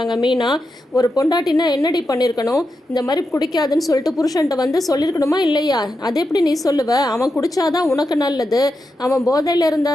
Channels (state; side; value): normal; both; correlation 0.87